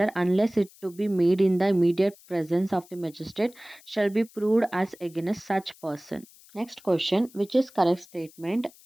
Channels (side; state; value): left; noise; hiss, 25 dB below the sound